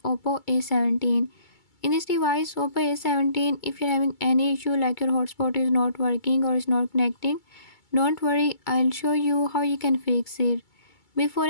Oppo A17. In this device Oppo A17, if you're having any issue like your hotspot is not working or is not connecting, don't worry, I'll show you how you can fix it. Before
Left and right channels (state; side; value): late; right; 2.3 ms